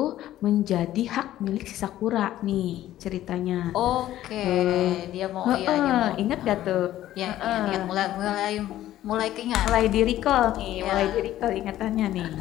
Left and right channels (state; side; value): quieter; right; 13.5 dB